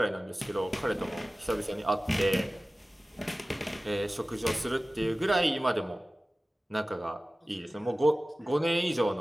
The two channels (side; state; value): both; normal; correlation 0.97